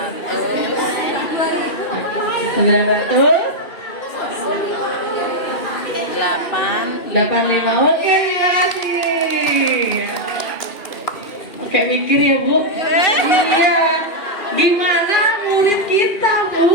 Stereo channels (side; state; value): right; late; 2.6 ms